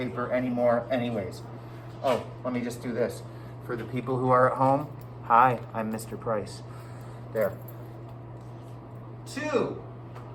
anymore anyways. Oh, let me just do this. For the people who are at home, hi, I'm Mr. Price. There. 2,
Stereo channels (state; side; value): identical; both; correlation 1.00